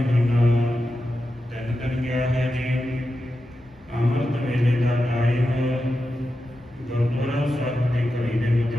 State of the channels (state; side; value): normal; both; correlation 0.90